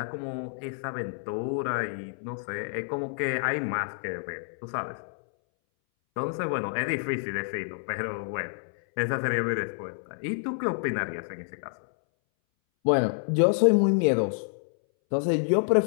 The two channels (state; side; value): silent; right; 59 dB below the other